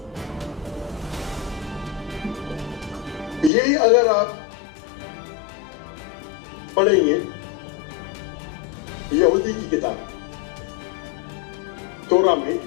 यही अगर आप पढ़ेंगे यहूदी की किताब तोरा में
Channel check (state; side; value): drops out; right; at 3.5 s